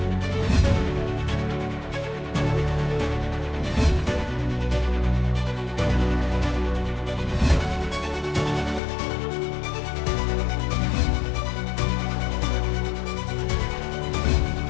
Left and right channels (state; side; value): drops out; right; at 8.8 s